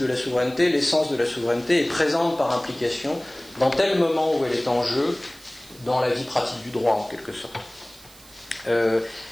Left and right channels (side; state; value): right; noise; hiss, 23 dB below the sound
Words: la souveraineté, l'essence de la souveraineté est présente par implication dans tel moment où elle est en jeu dans la vie pratique du droit, en quelque sorte.